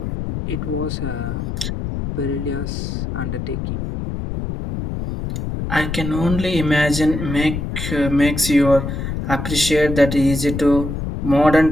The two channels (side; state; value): left; noise; rumble, 4 dB below the sound